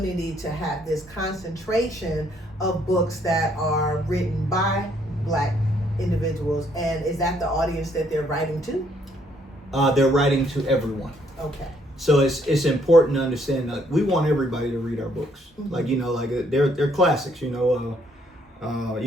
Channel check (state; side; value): normal; both; correlation 0.68